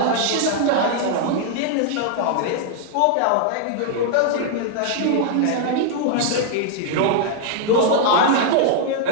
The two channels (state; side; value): different; both; correlation -0.01